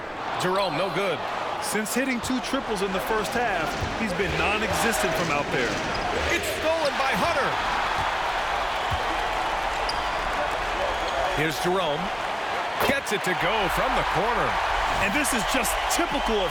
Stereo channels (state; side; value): identical; both; correlation 1.00